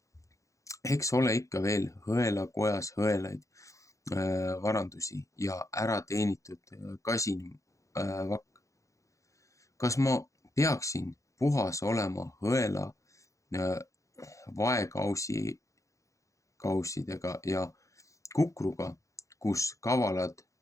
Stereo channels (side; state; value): right; late; 0.15 ms